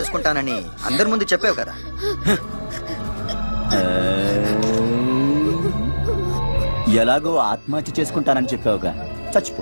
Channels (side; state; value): both; inverted; correlation -1.00